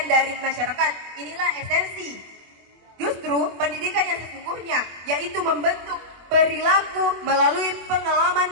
dari masyarakat. Inilah esensi justru pendidikan yang sesungguhnya, yaitu membentuk perilaku melalui pengalaman,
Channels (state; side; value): late; left; 24 ms